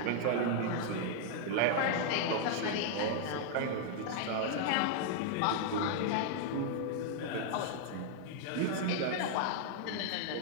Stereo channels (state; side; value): different; both; correlation -0.01